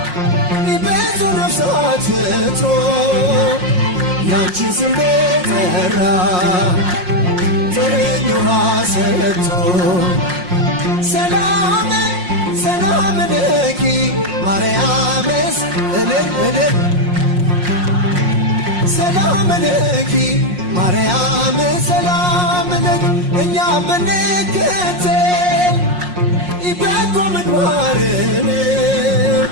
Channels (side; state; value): left; late; 5.6 ms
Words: ብዙ ነፍሳት ፍቶ ያንቺን ስም ጠራ ጥርኝ ውሃ ሰጥቶ ሰላም ሰላም ለኪ ማርያምስ እልል እልል ሰላም ለኪ ማርያም ሰላም ለኪ እኛ ብንከተል በጎ ምግባርን